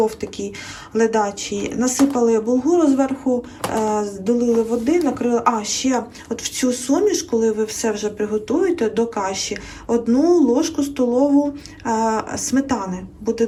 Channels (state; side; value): identical; both; correlation 1.00